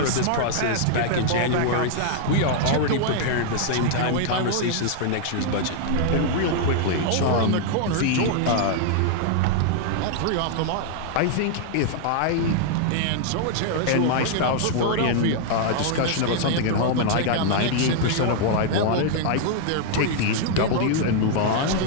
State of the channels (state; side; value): different; both; correlation 0.00